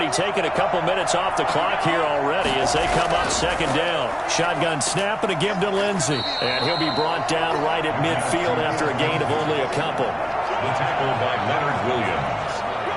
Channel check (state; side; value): identical; both; correlation 1.00